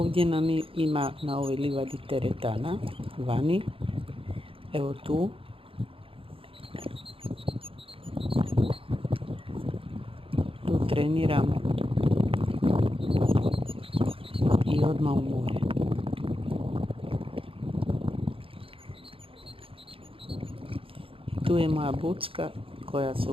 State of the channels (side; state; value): left; late; 0.26 ms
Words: nam ima na ovoj livadi teretana, vani. Evo tu. Tu treniramo i odmah u more. Tu je moja bucka koja se